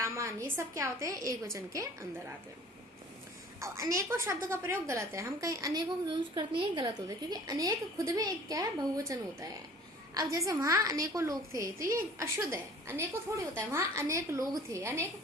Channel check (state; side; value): normal; both; correlation 0.48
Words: ये सब क्या होते हैं, एक वचन के अंदर आते हैं। अब अनेकों शब्द का प्रयोग गलत है, हम कहीं अनेकों को यूज करते हैं, गलत होता है, क्योंकि अनेक खुद में एक क्या है, बहुवचन होता है। अब जैसे वहां अनेकों लोग थे, तो ये अशुद्ध है, अनेकों थोड़ी होता है, वहां अनेक लोग थे,